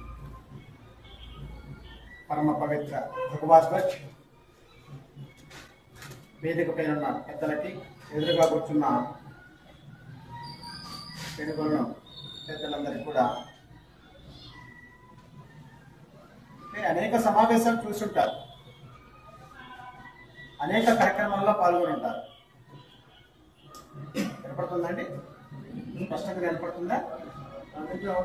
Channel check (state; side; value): identical; both; correlation 1.00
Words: పరమ పవిత్ర భగవాన్ వేదిక పైన ఉన్న పెద్దలకి, ఎదురుగా కూర్చున్న తెలుగులను పెద్దలందరికీ కూడా అనేక సమావేశాలు చూసుంటారు, అనేక కార్యక్రమాల్లో పాల్గొని ఉంటారు. వినపడుతుందండి? స్పష్టంగా వినపడుతుందా?